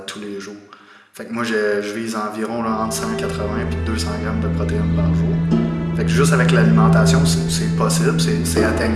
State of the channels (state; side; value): identical; both; correlation 1.00